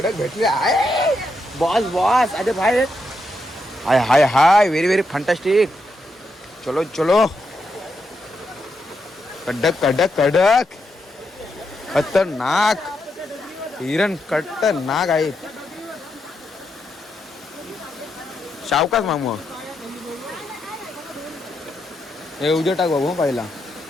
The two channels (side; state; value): both; normal; correlation 0.82